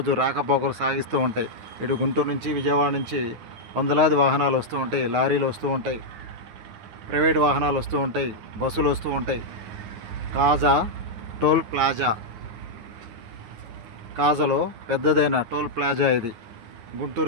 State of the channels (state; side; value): late; left; 9.4 ms